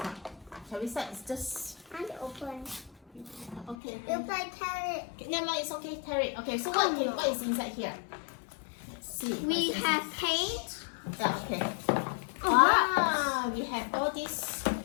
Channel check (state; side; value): drops out; right; at 3.8 s